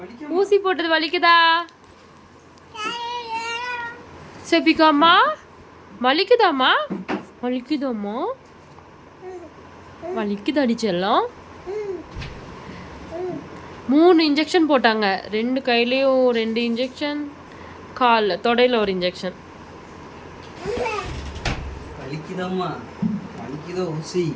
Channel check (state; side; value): identical; both; correlation 1.00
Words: ஊசி போட்டது வலிக்குதா? செஃபிகாமா வலிக்குதாம்மா? வலிக்குதாம்மா? வலிக்குதாடி செல்லம்? 3 இன்ஜெக்ஷன் போட்டாங்க. 2 கையிலையும் 2 இன்ஜெக்ஷன், காலில் தொடையில் ஒரு இன்ஜெக்ஷன். வலிக்குதாம்மா? வலிக்குதோ ஊசி?